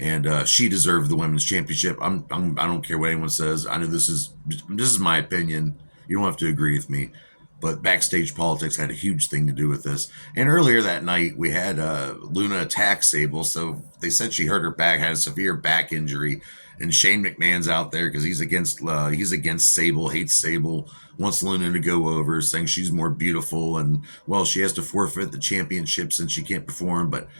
she deserved the women's championship. I don't care what anyone says. I know this is my opinion. You don't have to agree with me. But backstage politics had a huge thing to do with this. And earlier that night, we had Luna attack Sable. So they said she hurt her back, had a severe back injury. And Shane McMahon's out there because he's against Sable, hates Sable, wants Luna to go over, saying she's more beautiful. And, well, she has to forfeit the championship since she can't perform. But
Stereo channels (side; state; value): both; inverted; correlation -1.00